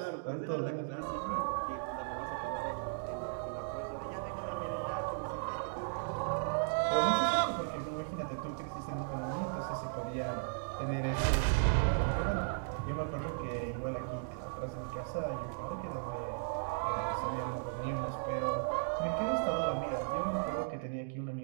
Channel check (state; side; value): silent; left; digital silence